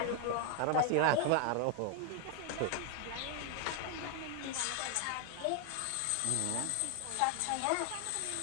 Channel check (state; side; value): different; both; correlation 0.00